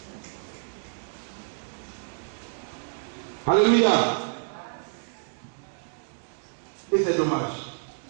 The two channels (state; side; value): silent; left; digital silence